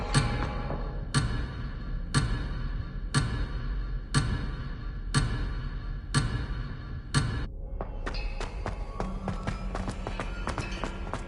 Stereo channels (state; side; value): identical; both; correlation 1.00